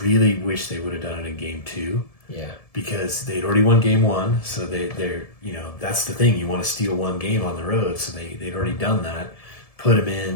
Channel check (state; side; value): late; right; 1.7 ms